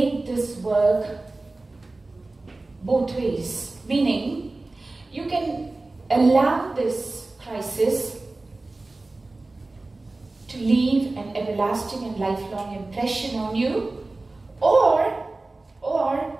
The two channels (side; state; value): left; quieter; 3.2 dB